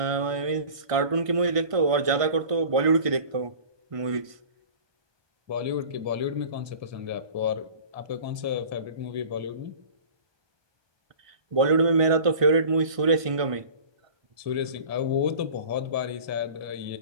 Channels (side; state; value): left; late; 1.5 ms